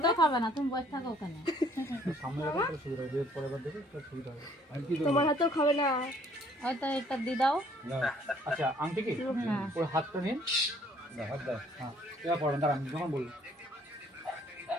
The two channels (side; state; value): both; normal; correlation 0.61